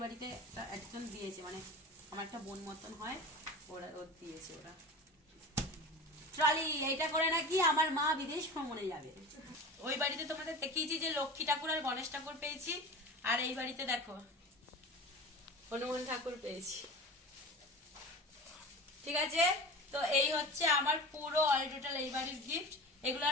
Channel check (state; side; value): normal; both; correlation 0.33